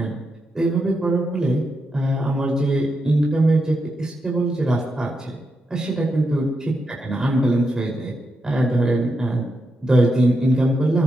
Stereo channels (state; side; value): normal; both; correlation 0.85